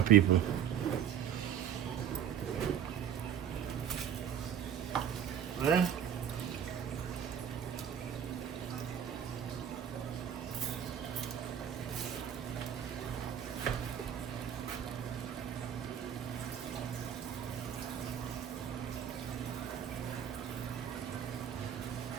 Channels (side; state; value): left; quieter; 9.1 dB